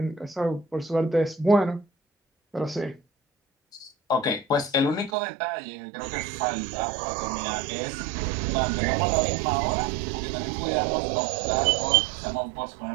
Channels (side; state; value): left; drops out; at 5.1 s